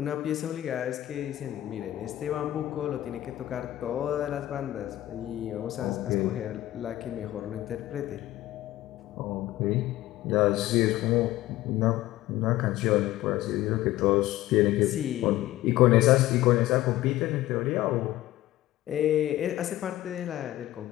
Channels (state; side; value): quieter; right; 15.3 dB